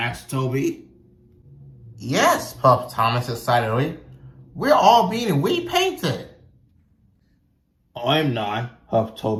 Toby. Yes, puffed Thomas excitedly. We're all being repainted. I'm not, puffed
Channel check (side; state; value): both; identical; correlation 1.00